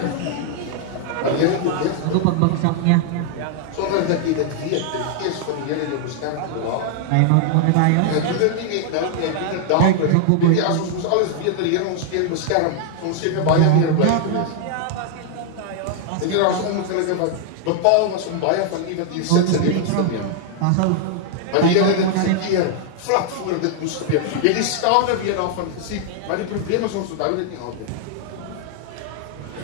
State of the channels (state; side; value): different; both; correlation 0.00